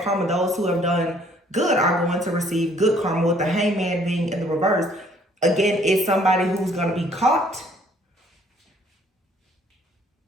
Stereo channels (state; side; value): normal; both; correlation 0.61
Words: karma. Those who have done good are going to receive good karma, with the Hangman being in the reverse. Again, it's somebody who's going to be caught.